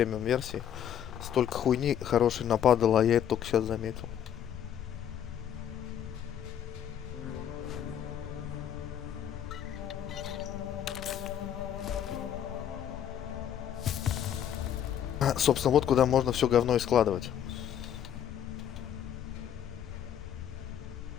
версии столько хуйни хорошей нападало, а я это только сейчас заметил. Собственно, вот куда можно все говно и складывать.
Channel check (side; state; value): right; quieter; 9.7 dB